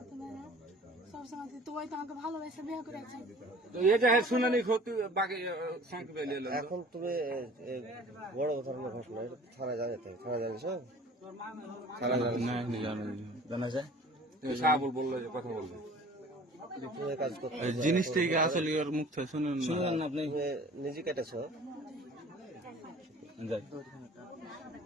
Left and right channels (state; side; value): normal; both; correlation 0.47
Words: দেয় না সবসময় তুই তো আমাকে ভালোবেসে বিয়ে করেছি শুনানি এখন তুমি বড় ধরনের ঘটনা থানায় জানাতে থানায় জানিয়েছো জানা যায় সাহাবুল বললো যে কথা বলবে কাজ করতে জিনিসটাই আসলে ওর মুখ থেকে শুনুন না আপনি নিজে কেটেছ